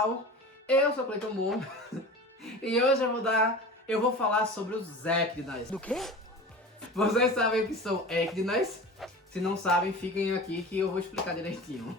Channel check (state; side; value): normal; both; correlation 0.35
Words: Eu sou Cleiton Moore e hoje eu vou falar sobre os Ecdinas. Do quê? Vocês sabem o que são Ecdinas? Se não sabem, fiquem aqui que eu vou explicar direitinho.